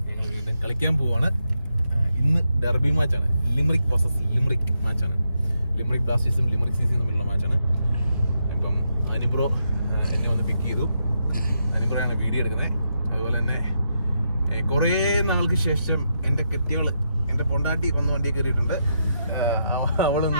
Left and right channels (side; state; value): both; inverted; correlation -0.82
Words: ഞങ്ങൾ വീണ്ടും കളിക്കാൻ പോവാണ്. ഇന്ന് ഡെർബി മാച്ചാണ്. ലിമറിക് വേഴ്സസ് ലിമറിക് മാച്ചാണ്. ലിമറിക് ബ്ലാസ്റ്റേഴ്സും ലിമറിക് സിസിയും തമ്മിലുള്ള മാച്ചാണ്. ഇപ്പം അനിബ്രോ എന്നെ വന്ന് പിക്ക് ചെയ്തു. അനിബ്രോയാണ് വീഡിയോ എടുക്കുന്നത്. അതുപോലെ തന്നെ കുറേ നാൾക്ക് ശേഷം എൻ്റെ കെട്ടിയോള്, എൻ്റെ പൊണ്ടാട്ടി വന്ന് വണ്ടി കയറിയിട്ടുണ്ട്.